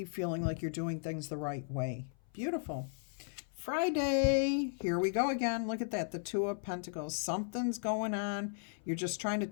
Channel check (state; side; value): silent; right; 54 dB below the other